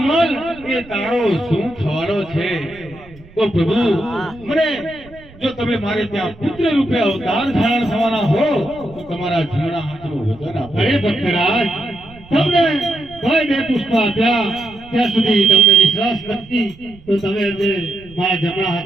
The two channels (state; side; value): noise; right; rumble, 22 dB below the sound